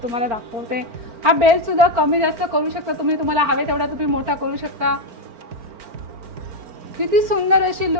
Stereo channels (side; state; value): left; late; 4.4 ms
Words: तुम्हाला दाखवते। हा बेल्ट सुद्धा कमी जास्त करू शकता तुम्ही, तुम्हाला हवे तेवढा तुम्ही मोठा करू शकता। किती सुंदर अशी